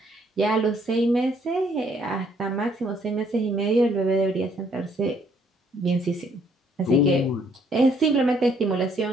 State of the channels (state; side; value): normal; both; correlation 0.66